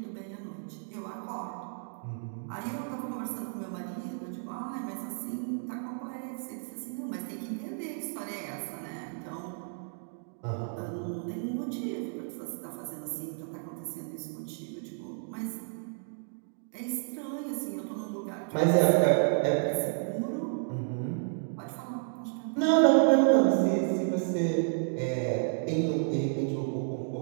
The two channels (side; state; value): left; silent; digital silence